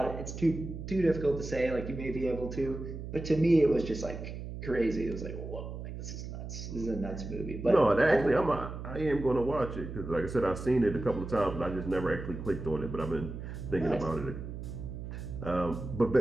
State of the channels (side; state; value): right; noise; hum, 8 dB below the sound